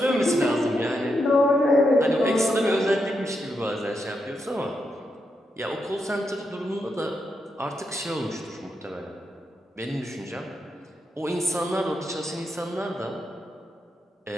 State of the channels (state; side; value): normal; both; correlation 0.83